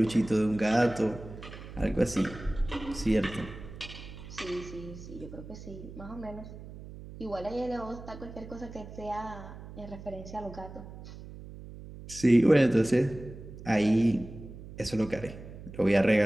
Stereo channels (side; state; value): right; noise; hum, 14 dB below the sound